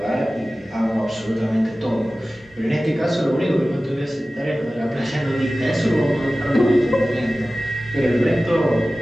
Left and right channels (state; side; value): normal; both; correlation 0.96